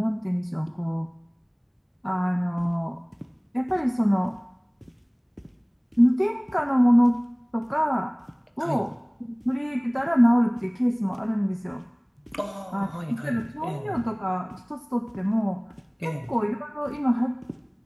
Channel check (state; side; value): identical; both; correlation 1.00